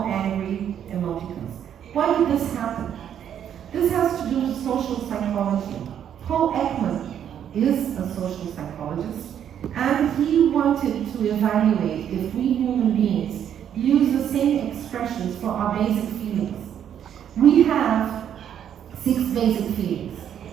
angry emoticons. Why did this happen? This has to do with social psychology. Paul Ekman is a social psychologist, and he wanted to evaluate if we human beings use the same expressions for our basic feelings. We have 6 basic feelings:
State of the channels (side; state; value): left; quieter; 9.4 dB